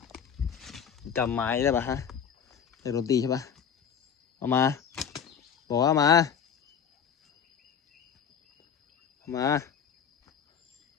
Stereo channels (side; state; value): right; quieter; 7.6 dB